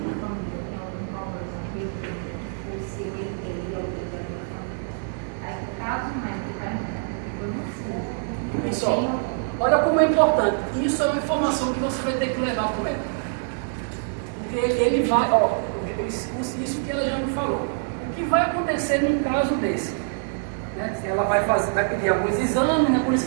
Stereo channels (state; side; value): silent; left; 62 dB below the other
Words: minha família tem algum problema aqui, você teria alguém da minha família. Aí, caso médico, eu não sei. Pessoal, olha como é importante. Isso é uma informação que você vai ter que levar para o médico. Porque ele vai, isso que ela já me falou. O que vai acontecer num caso desse? Né? Ela vai pedir alguns exames, né? Por isso